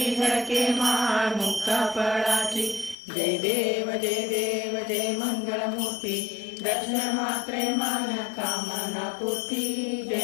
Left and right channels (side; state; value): right; drops out; at 3.0 s